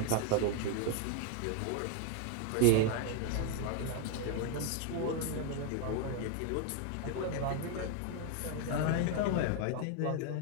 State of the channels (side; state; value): both; different; correlation 0.00